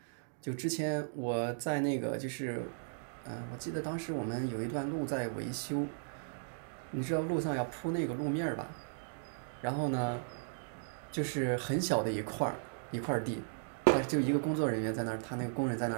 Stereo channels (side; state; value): left; silent; digital silence